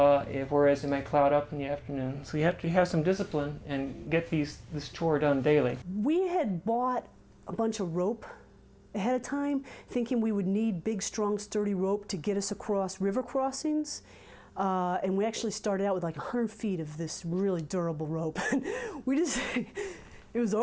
it might cloud up in the afternoon. So you have to have some discipline and get this chore done daily. We had bought a bunch of rope ahead of time, thinking we would need big, strong, sturdy rope to get us across river crossings. And we actually started out with like 100 feet of this really durable rope. It was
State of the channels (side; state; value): both; identical; correlation 1.00